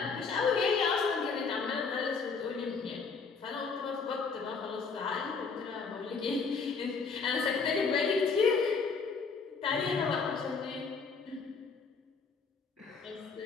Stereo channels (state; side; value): quieter; right; 5.0 dB